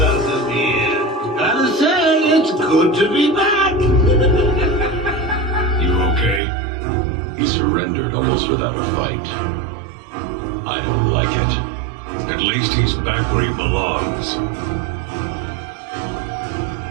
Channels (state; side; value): drops out; left; at 6.4 s